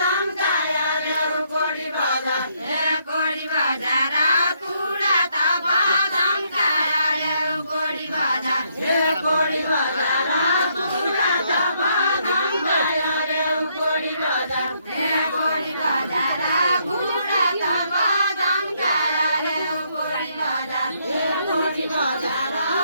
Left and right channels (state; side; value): inverted; both; correlation -0.72